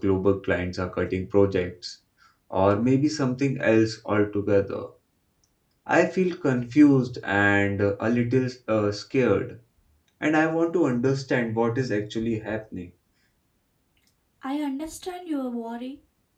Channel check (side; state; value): both; identical; correlation 1.00